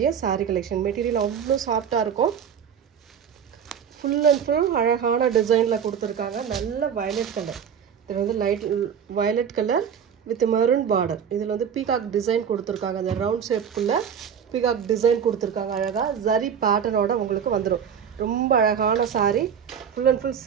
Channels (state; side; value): quieter; left; 7.9 dB